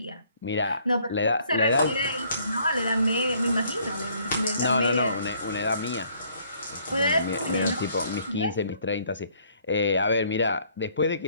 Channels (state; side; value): inverted; both; correlation -0.63